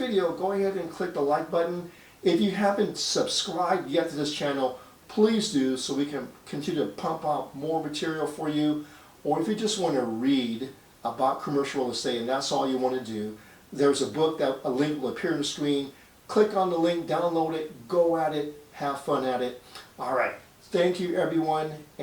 go ahead and click the like button. If you haven't subscribed yet to this channel, please do, so we can continue to pump out more material for you. Or if you just want to read about commercial real estate and that's all you want to do, there's a book that a link will appear on the screen. Click on the link, download it, go at it, have fun at it. All right, thank you everyone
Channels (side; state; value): both; identical; correlation 1.00